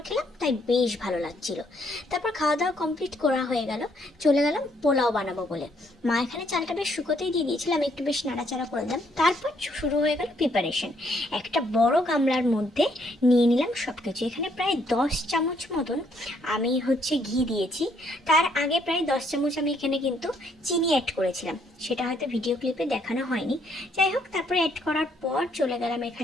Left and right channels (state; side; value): normal; both; correlation 0.69